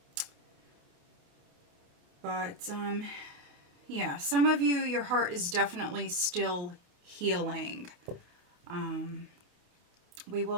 But yeah, some of you, your heart is definitely still healing. We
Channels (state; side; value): late; left; 28 ms